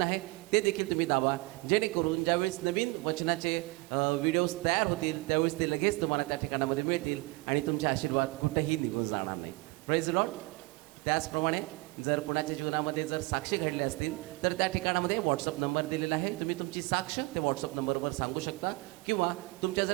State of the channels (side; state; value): left; quieter; 24.2 dB